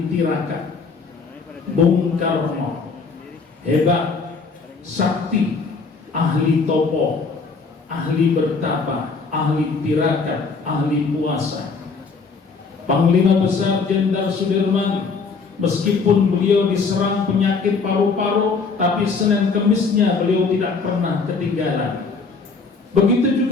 tirakat. Bung Karno hebat, sakti, ahli topo, ahli bertapa, ahli tirakat, ahli puasa. Panglima Besar Jenderal Sudirman, meskipun beliau diserang penyakit paru-paru, tapi Senin Kemisnya beliau tidak pernah ketinggalan. Begitu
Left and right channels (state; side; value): quieter; right; 4.6 dB